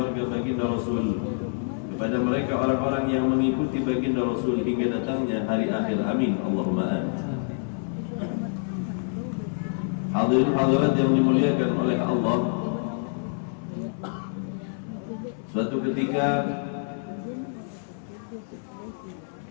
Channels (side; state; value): right; silent; 60 dB below the other